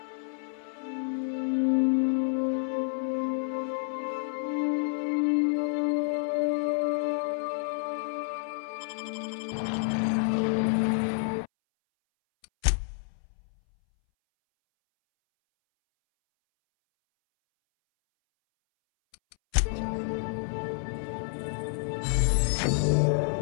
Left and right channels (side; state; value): right; silent; 58 dB below the other